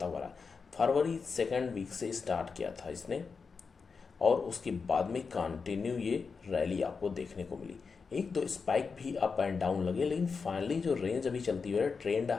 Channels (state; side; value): quieter; right; 5.1 dB